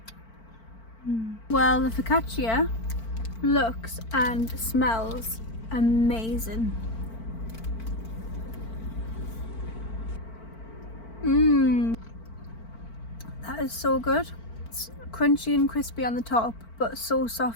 Well, the focaccia looks and smells amazing. That is so good. It's crunchy and crispy on the top, but so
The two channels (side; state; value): right; late; 4.5 ms